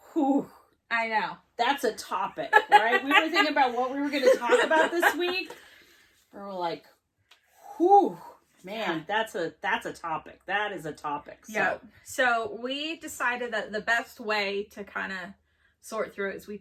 Whew. I know. That's a topic, right? We were thinking about what we were going to talk about this week. We were like, whew, man, that's a topic. That is a topic. So. Yeah. So we decided that the best way to kind of sort through it is we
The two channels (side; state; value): both; identical; correlation 1.00